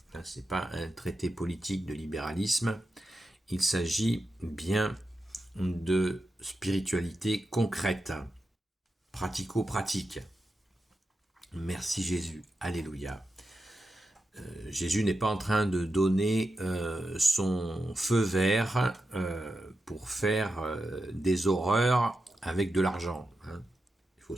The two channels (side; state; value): both; normal; correlation 0.89